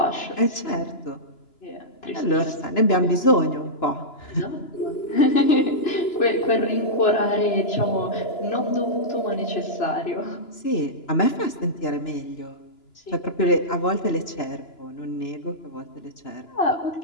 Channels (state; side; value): late; right; 2.9 ms